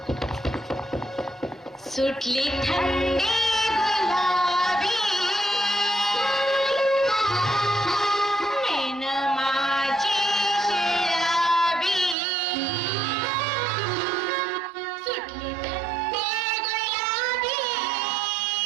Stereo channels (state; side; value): drops out; left; at 12.2 s